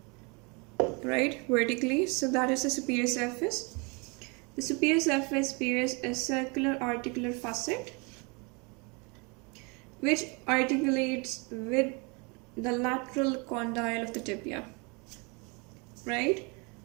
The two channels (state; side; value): quieter; left; 30.9 dB